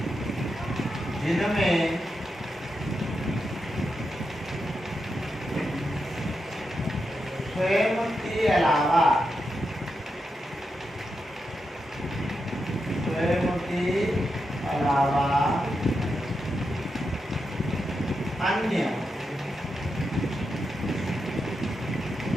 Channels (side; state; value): both; normal; correlation 0.86